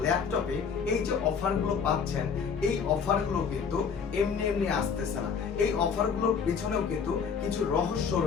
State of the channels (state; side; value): quieter; right; 6.3 dB